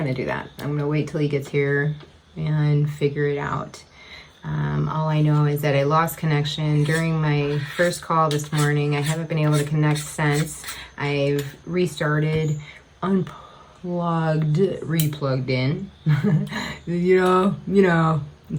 to do that. I'm going to wait till he gets here and figure it out. All I know is that I lost connection during my first call this morning. I haven't been able to connect since. I've restarted, unplugged, replugged in. you know,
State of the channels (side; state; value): both; identical; correlation 1.00